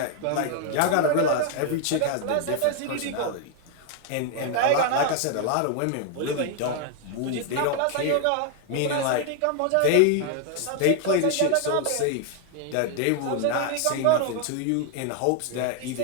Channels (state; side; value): different; both; correlation 0.00